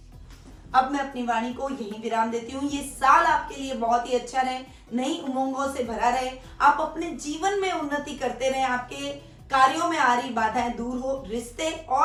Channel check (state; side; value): identical; both; correlation 1.00